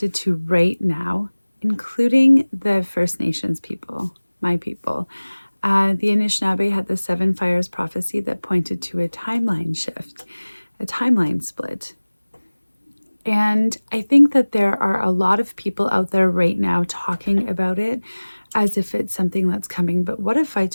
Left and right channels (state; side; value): inverted; both; correlation -1.00